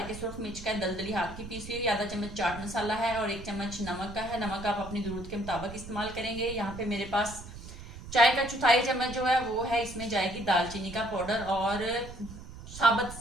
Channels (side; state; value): right; noise; rumble, 13 dB below the sound